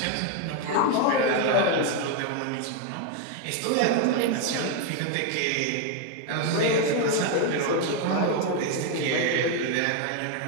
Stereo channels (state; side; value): different; both; correlation 0.01